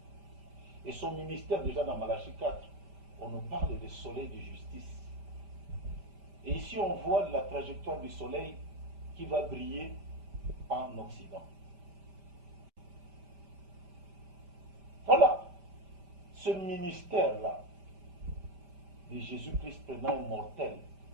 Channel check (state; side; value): late; left; 5.1 ms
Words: Et son ministère, déjà dans Malachie 4, on nous parle de soleil de justice. Et ici, on voit la trajectoire du soleil qui va briller en Occident. Voilà ce ministère-là de Jésus-Christ prenant un mortel